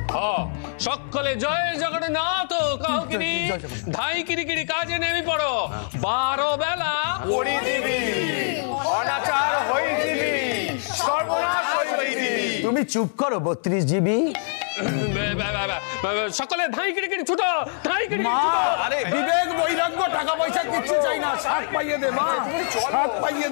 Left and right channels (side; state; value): right; silent; 63 dB below the other